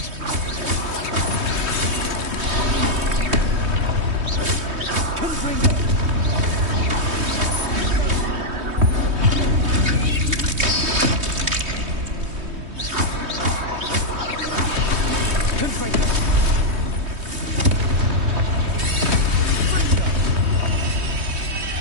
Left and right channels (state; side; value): late; left; 3.2 ms